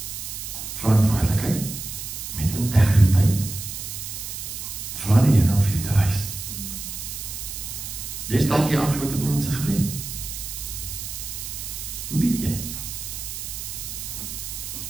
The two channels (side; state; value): right; noise; hiss, 7 dB below the sound